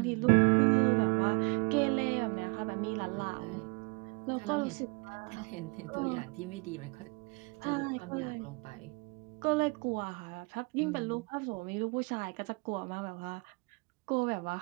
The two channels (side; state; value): left; quieter; 31.1 dB